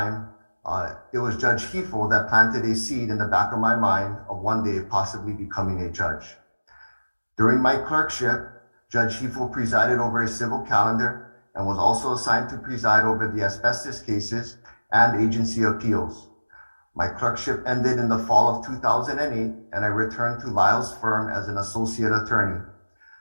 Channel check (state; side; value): inverted; both; correlation -1.00